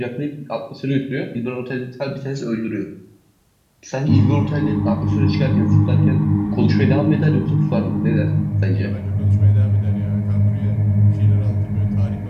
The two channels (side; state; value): both; identical; correlation 1.00